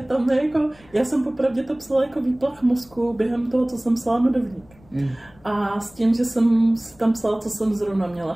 je jako... Já jsem popravdě to psala jako výplach mozku během toho, co jsem psala Medovník. A s tím, že jsem tam psala, co jsem zrovna měla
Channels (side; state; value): left; noise; rumble, 28 dB below the sound